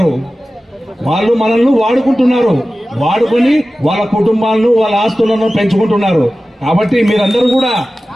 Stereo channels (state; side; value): normal; both; correlation 0.95